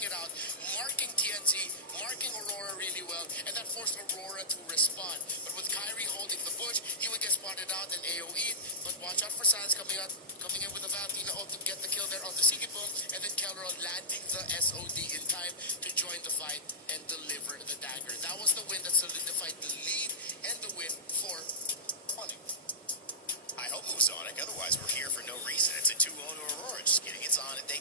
out, marking TNT, marking Aurora really well, and that forced Aurora to respond. But with Kyrie holding the bush, he would get spotted out and AoE. But watch out for Sans coming in with a Valentina ult to get the kill there on the Sigibum, and then Kelron landing the SOD in time to join the fight and deliver the dagger. That was the win that solidified the lead and the win for Onic. I hope it was Onic. Otherwise, we're here for no reason. It's a 2-0 to Aurora. Just kidding. It's Onic.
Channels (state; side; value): normal; both; correlation -0.12